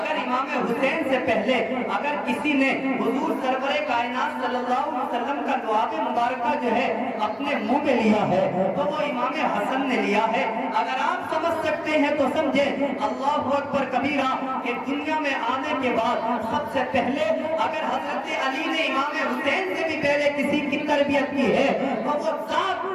امام حسین سے پہلے اگر کسی نے حضور سرور کائنات صلی اللہ علیہ وسلم کا لعاب مبارکہ جو ہے اپنے منہ میں لیا ہے تو وہ امام حسن نے لیا ہے۔ اگر آپ سمجھ سکتے ہیں تو سمجھیں، اللہ اکبر کبیرہ، کہ دنیا میں آنے کے بعد سب سے پہلے اگر حضرت علی نے امام حسین سے بھی پہلے کسی کی تربیت کی ہے تو وہ ذات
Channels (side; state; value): both; identical; correlation 1.00